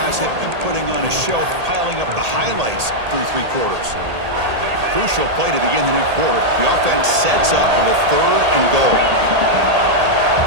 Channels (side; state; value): left; late; 1.8 ms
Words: have been putting on a show, piling up the highlights through 3 quarters. Crucial play to begin the new quarter. The offense sets up with a 3rd and goal.